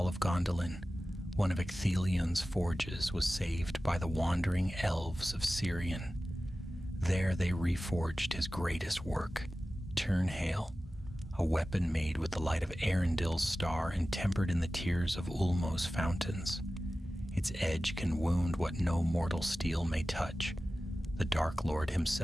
of Gondolin, one of Ecthelion's forges was saved by the wandering elves of Sirion. There they reforged his greatest work, Turnhale, a weapon made with the light of Arundel's star and tempered in the tears of Ulmo's fountains. Its edge can wound what no mortal steel may touch. The Dark Lord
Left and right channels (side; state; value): both; normal; correlation 0.95